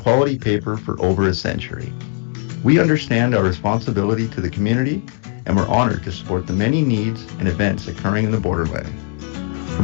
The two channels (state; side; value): quieter; right; 39.1 dB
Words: paper for over a century. We understand our responsibility to the community, and we're honored to support the many needs and events occurring in the Borderland.